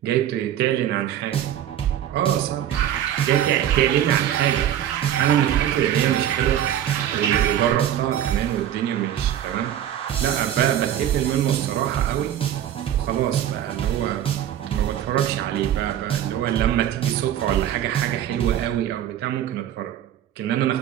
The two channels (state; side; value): quieter; left; 10.9 dB